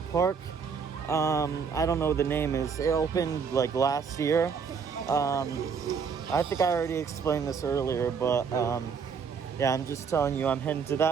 I don't know what the name is. It opened like last year. I think I already explained this earlier, but yeah, I'm just telling you I'm heading to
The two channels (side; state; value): left; quieter; 6.1 dB